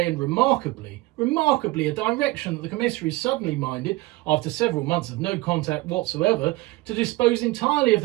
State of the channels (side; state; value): left; quieter; 20.4 dB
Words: and remarkably a direction that the commissary suddenly minded, after several months of no contact whatsoever, to dispose entirely of